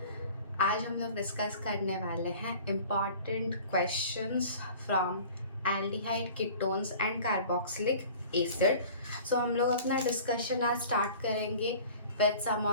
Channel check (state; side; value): inverted; both; correlation -0.44